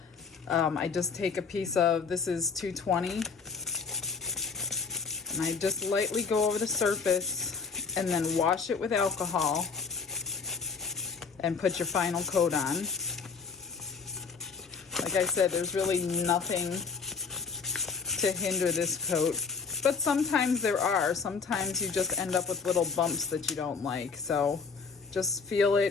I just take a piece of, this is 220, and I just lightly go over the surface and then wash it with alcohol and put your final coat on. Like I said, there's really nothing to hinder this coat, but sometimes there are. Sometimes you just end up with little bumps that you don't like. So just feel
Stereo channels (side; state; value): right; quieter; 5.3 dB